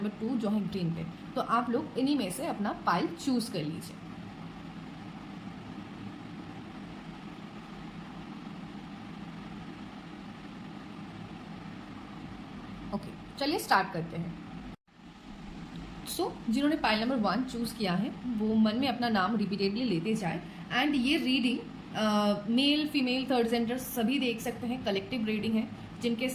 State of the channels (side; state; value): both; identical; correlation 1.00